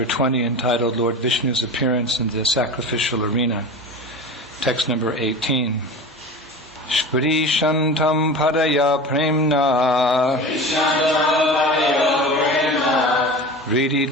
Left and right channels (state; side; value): normal; both; correlation 0.32